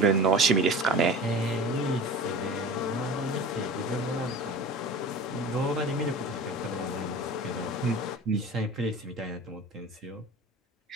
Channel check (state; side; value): normal; both; correlation 0.37